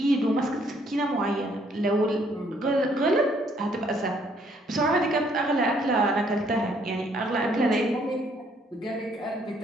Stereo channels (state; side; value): normal; both; correlation 0.66